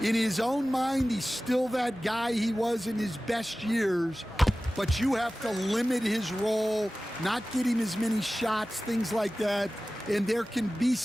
in his own mind, he's still that guy he was in his best years, but you have to limit his role, not get him as many shots, things like that, and there can be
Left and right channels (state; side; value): normal; both; correlation 0.96